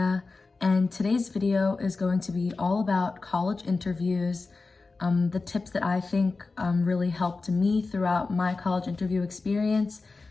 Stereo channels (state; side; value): quieter; right; 3.9 dB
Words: and today's video is going to be all about college interviews, the tips that I think really helped me throughout my college interview experience,